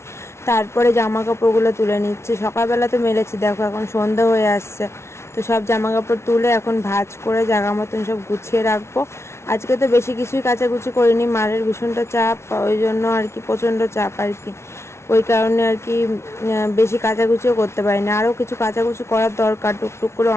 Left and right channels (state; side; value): late; right; 0.13 ms